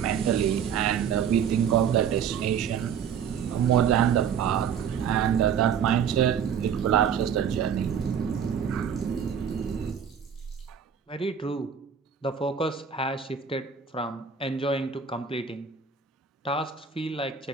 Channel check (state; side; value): quieter; left; 7.6 dB